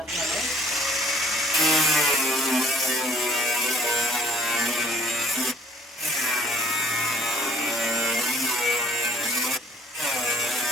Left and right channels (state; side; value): normal; both; correlation 0.56